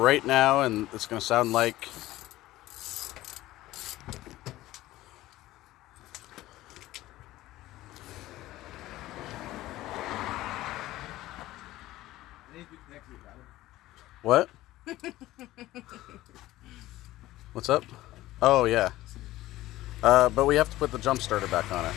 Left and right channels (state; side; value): quieter; right; 16.3 dB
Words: now, and it's going to sound like... What? What's up? Oh, yeah. But we have to put the jump starter back on it